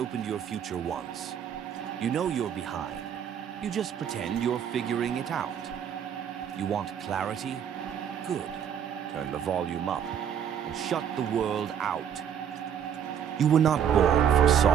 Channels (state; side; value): quieter; left; 8.7 dB